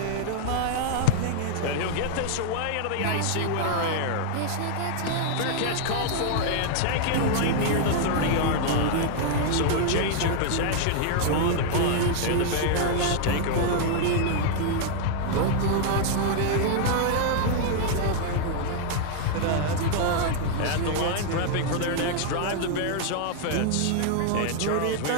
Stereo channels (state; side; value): different; both; correlation -0.01